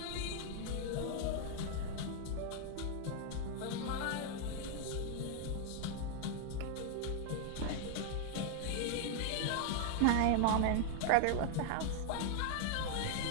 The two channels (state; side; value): different; both; correlation 0.00